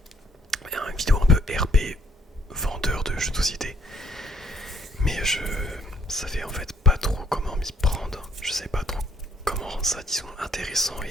un peu RP vendeur de jeux de société. Mais je savais en fait pas trop comment m'y prendre. Je savais pas trop comment rendre ça, disons, intéressant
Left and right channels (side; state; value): both; normal; correlation 0.64